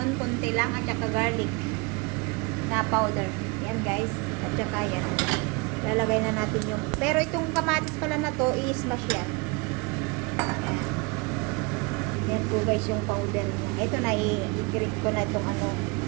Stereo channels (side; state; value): left; quieter; 28.4 dB